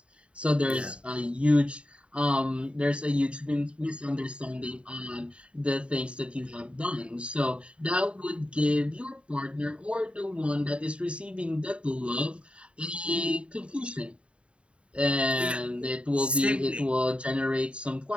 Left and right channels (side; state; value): left; late; 0.059 ms